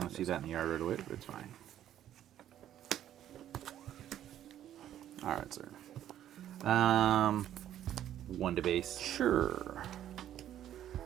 don't see that in the yard right away, but it's fine. All right, sir. 1 to base. Sure.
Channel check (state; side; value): quieter; left; 11.4 dB